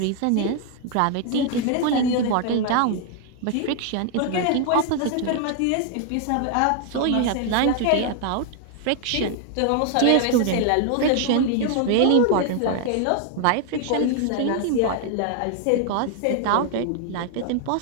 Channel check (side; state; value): both; different; correlation 0.00